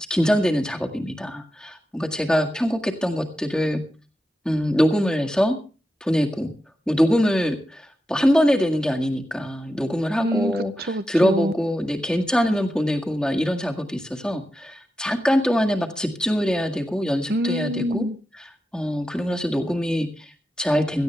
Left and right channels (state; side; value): normal; both; correlation 0.90